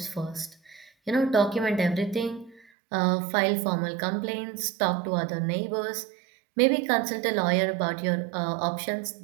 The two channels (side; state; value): left; drops out; at 2.6 s